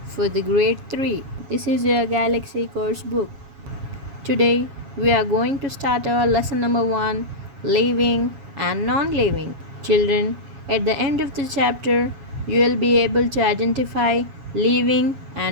for the grade 3. This is your Galaxy course book. Today we are going to start our lesson number 1, living and non-living. Children, at the end of the chapter you will be able to identify living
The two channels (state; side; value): late; left; 7.2 ms